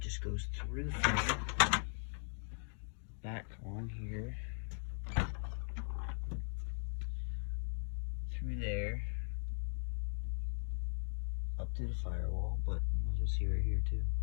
goes through the thing, back on here, through there, up to the firewall, but might as well see right here too.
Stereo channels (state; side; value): silent; right; 52 dB below the other